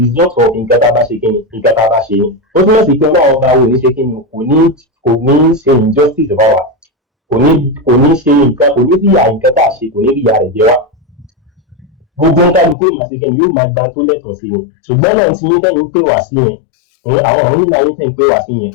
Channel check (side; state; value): right; drops out; at 12.8 s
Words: result of nǹkan tá a bá ṣe kíni nǹkan tá a bá ṣe ni. Ó túmọ̀ sí pé ọlọ́run ọba wo ní ṣe kíni kò ní ṣe injustice bá wa, kò ní ṣe nǹkan, kò ní ríyà nǹkan tá a ṣe, kò ní ríyà rẹ̀ jẹ wá. Gbogbo ń kálukú ìmọ̀síkẹ́ ni yóò máa gba tó lẹ́tọ̀ọ́ sí ni. Ṣùgbọ́n náà tí yín tẹ́yìn pé wá sí yẹn, àwọn ọ̀run nínú ayé tẹ́yìn pé wá sí yẹn,